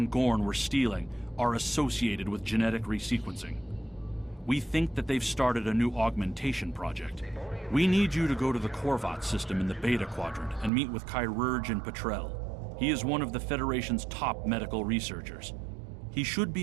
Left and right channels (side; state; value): left; drops out; at 10.7 s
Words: Gorn were stealing are associated with genetic resequencing. We think that they've started a new augmentation project. We need you to go to the Korvat system in the Beta Quadrant and meet with Chirurgeon Petrel. He is one of the Federation's top medical researchers. He should